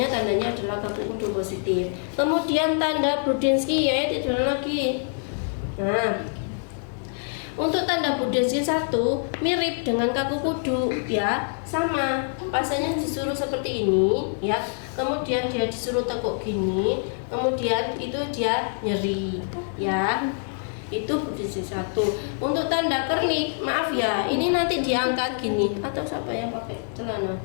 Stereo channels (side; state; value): right; silent; 61 dB below the other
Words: tandanya adalah kaku kudu positif. Kemudian tanda Budinsky ya, tiduran lagi. Nah, untuk tanda Budinsky 1 mirip dengan kaku kudu ya, sama. Pasiennya disuruh seperti ini ya. Kemudian dia disuruh tekuk gini, kemudian itu dia nyeri ya. Itu Budinsky 1. Untuk tanda Kernik, maaf ya, ini nanti diangkat gini. Atau siapa yang pakai celana?